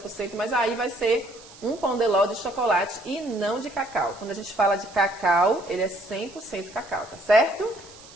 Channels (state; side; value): noise; right; hiss, 21 dB below the sound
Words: mas aí vai ser um pão de ló de chocolate e não de cacau. Quando a gente fala de cacau, ele é 100% cacau, tá certo?